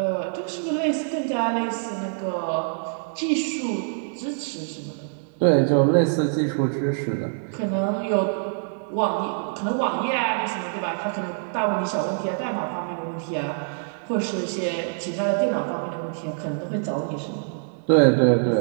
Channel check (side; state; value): left; silent; digital silence